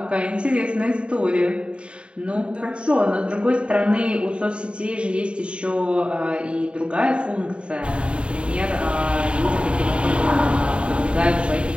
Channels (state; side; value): late; left; 0.056 ms